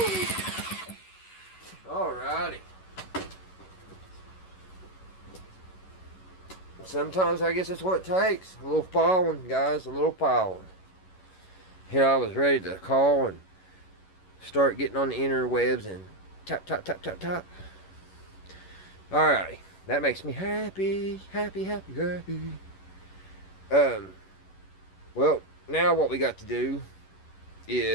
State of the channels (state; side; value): late; right; 11 ms